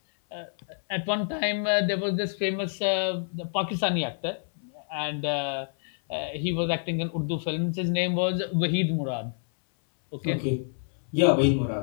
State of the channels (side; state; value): right; silent; 58 dB below the other